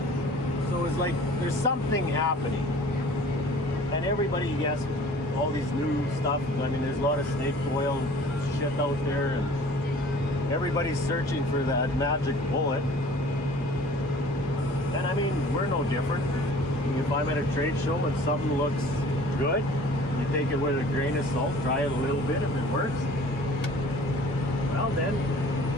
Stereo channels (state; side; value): normal; both; correlation 0.48